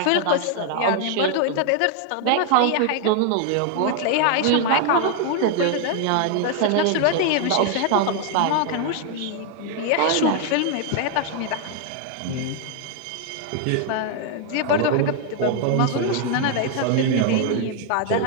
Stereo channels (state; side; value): different; both; correlation 0.00